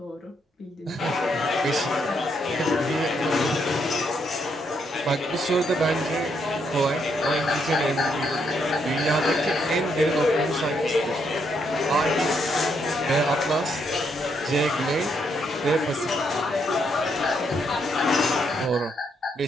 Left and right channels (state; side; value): normal; both; correlation 0.76